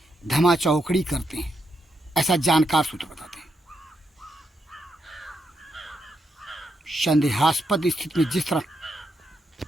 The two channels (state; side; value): normal; both; correlation 0.81